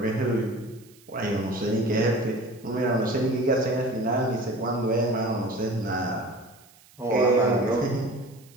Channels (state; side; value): noise; right; hiss, 27 dB below the sound